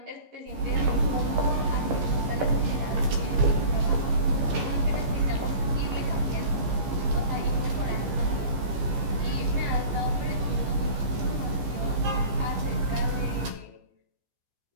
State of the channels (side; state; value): left; late; 15 ms